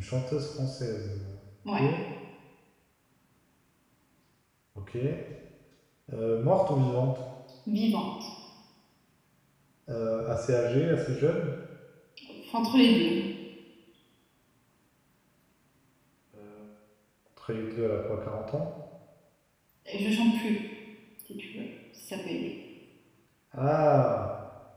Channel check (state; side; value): identical; both; correlation 1.00